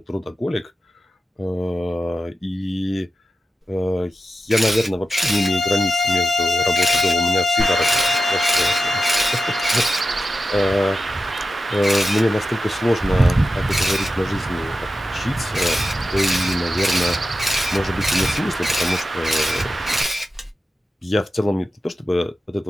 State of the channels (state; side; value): normal; both; correlation 0.91